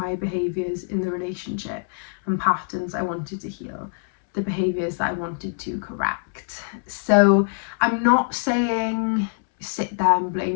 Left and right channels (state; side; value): silent; right; 63 dB below the other